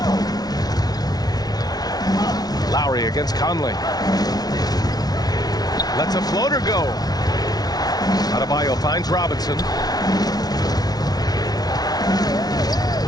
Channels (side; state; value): right; late; 0.19 ms